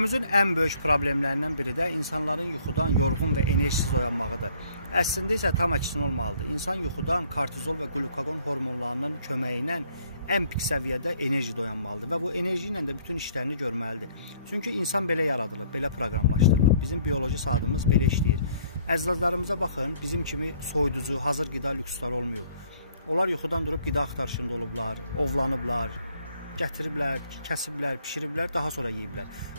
ən böyük problemlərindən biri də insanların yuxudan yorğun və enerjisiz oyanmağıdır. Əslində isə tam əksinə olmalıdır. İnsan yuxudan kortizol və qlukagon hormonlarının köməyi ilə ən pik səviyyədə enerjide oyanmalıdır və bu enerji ilə də bütün işlərini görməlidir. Çünki insan belə yaradılıb, belə proqramlaşdırılıb. Bizim bioloji saatımız belə işləyir. Əzizlərimize baxın, bizim kimi soyuducu, hazır qida lüksləri olmuyor. Onlar yuxudan durub qida axtarışında olublar, ovlanıblar, gətiriblər, kəsiblər, pişiriblər, daha sonra yeyiblər.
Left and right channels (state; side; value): inverted; both; correlation -0.62